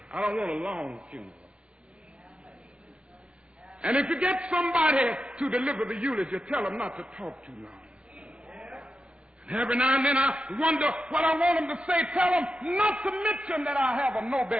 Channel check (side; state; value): left; late; 0.058 ms